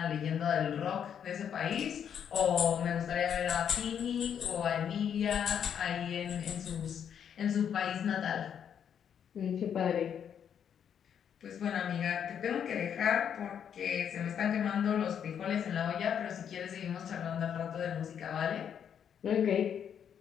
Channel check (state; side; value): quieter; right; 8.4 dB